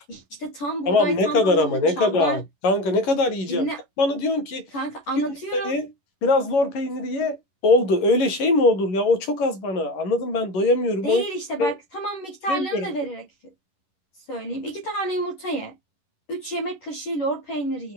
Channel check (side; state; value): right; late; 11 ms